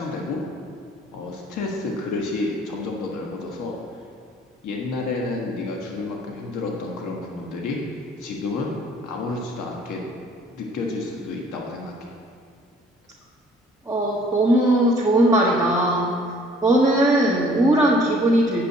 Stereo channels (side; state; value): both; normal; correlation 0.57